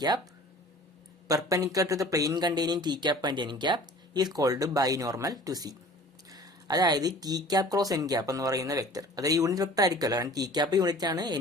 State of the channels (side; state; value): both; normal; correlation 0.46